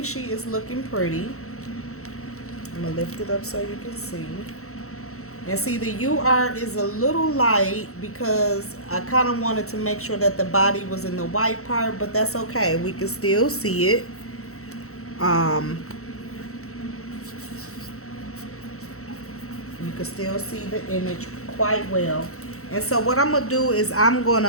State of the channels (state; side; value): late; right; 0.64 ms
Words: she is looking pretty. I'm gonna lift it up so you can see. And see, the UR is a little light because I kind of wanted to make sure that the body was in the white part, but that's okay. We can still see it. You can still see the image quite well. And so what I'm going to do is I'm going